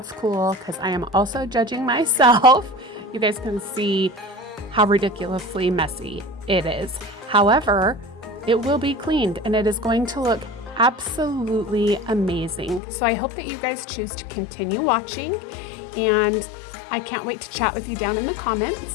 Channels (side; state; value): right; drops out; at 12.8 s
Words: cool, because I am also judging myself. You guys can see how ridiculously messy it is. However, it will be cleaned and it is going to look absolutely amazing. So I hope that you guys choose to continue watching, and I can't wait to chat with you down in the